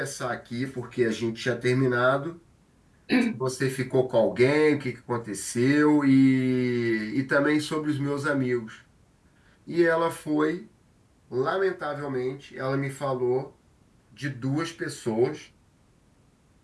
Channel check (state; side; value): identical; both; correlation 1.00